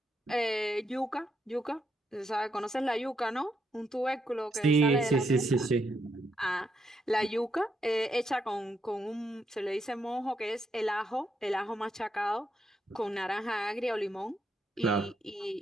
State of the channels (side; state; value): both; normal; correlation 0.79